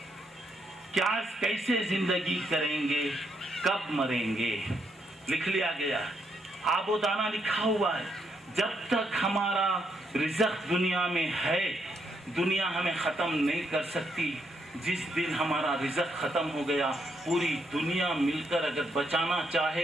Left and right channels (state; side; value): normal; both; correlation 0.77